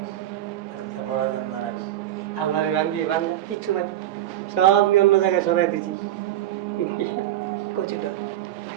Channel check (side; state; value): left; quieter; 12.8 dB